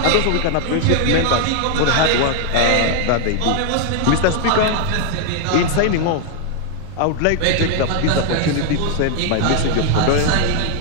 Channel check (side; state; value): both; different; correlation 0.00